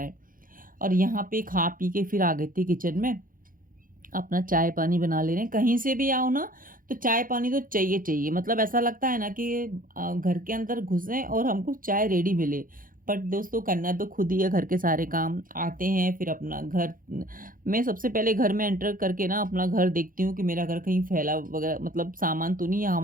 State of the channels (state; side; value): late; left; 0.40 ms